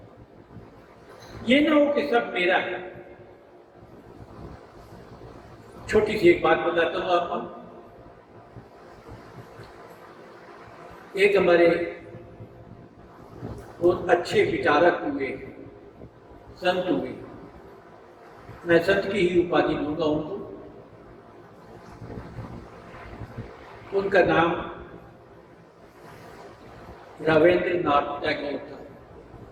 ये ना हो कि सब मेरा है। छोटी सी एक बात बताता हूं आपको। एक हमारे बहुत अच्छे विचारक हुए, संत हुए, मैं संत की ही उपाधि दूंगा उनको। उनका नाम रविंद्रनाथ टैगोर था।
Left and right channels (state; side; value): identical; both; correlation 1.00